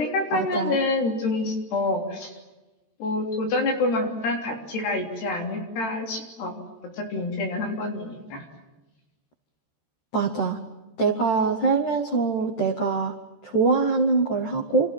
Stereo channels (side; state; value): right; late; 13 ms